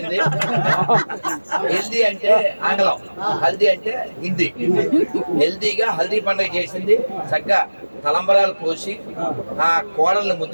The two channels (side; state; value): both; inverted; correlation -1.00